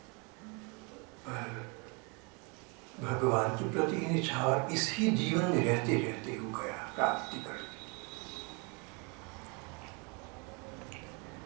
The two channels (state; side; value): quieter; left; 32.1 dB